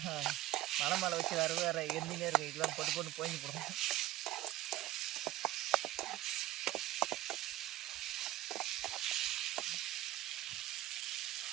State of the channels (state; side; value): quieter; left; 15.6 dB